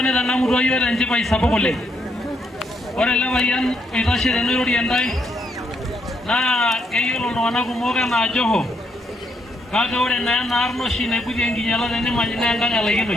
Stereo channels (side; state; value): both; normal; correlation 0.75